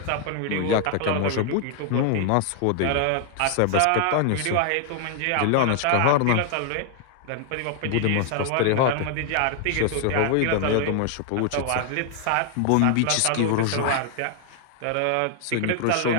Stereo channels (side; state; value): both; different; correlation 0.00